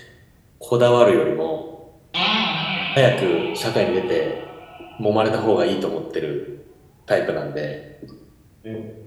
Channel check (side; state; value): both; identical; correlation 1.00